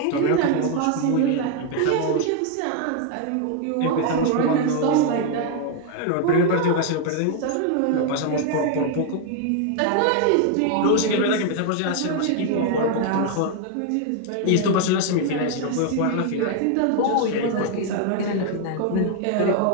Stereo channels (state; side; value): different; both; correlation 0.00